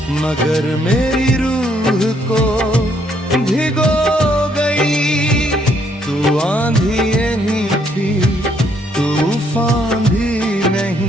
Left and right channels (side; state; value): both; normal; correlation 0.70